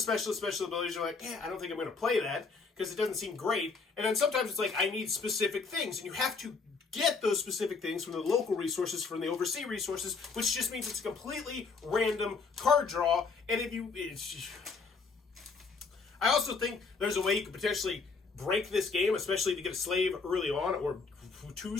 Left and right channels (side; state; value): right; quieter; 4.6 dB